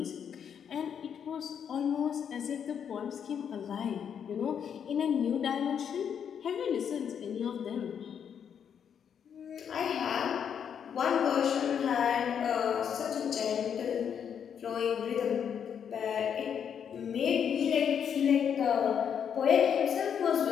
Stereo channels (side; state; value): right; quieter; 8.0 dB